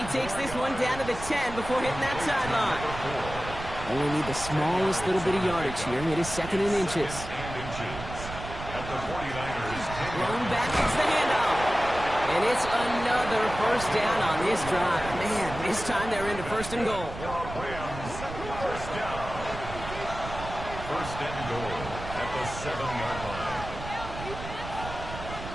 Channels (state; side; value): noise; right; rumble, 10 dB below the sound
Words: takes this one down to the 10 before hitting that sideline. Only need the smallest little bit of yardage here. It is 2nd and inches. At the 49ers. Thrown back, it's the handoff. And it's another first down on this drive. Man, this time they're into 1st and goal. Rams first down. 1st and goal at the 7-yard line.